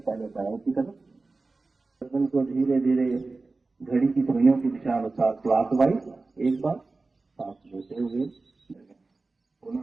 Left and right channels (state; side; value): quieter; left; 3.6 dB